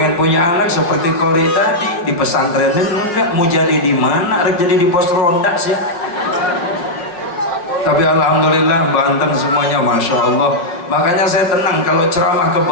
punya anak seperti Kori tadi, di pesantren enggak, mau jadi di mana? Jadi di pos ronda sih. Tapi alhamdulillah Banten semuanya Masya Allah. Makanya saya tenang kalau ceramah ke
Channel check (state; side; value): late; right; 5.6 ms